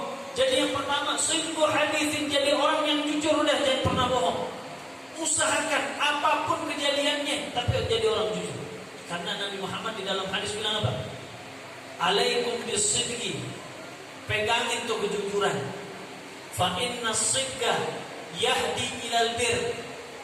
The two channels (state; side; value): identical; both; correlation 1.00